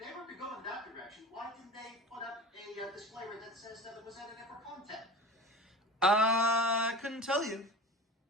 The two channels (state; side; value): normal; both; correlation 0.35